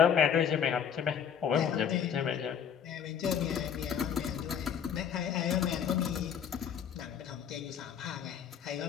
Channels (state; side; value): quieter; right; 8.1 dB